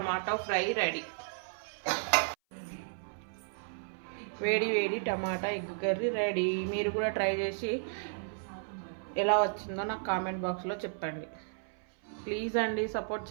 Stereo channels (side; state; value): left; silent; 55 dB below the other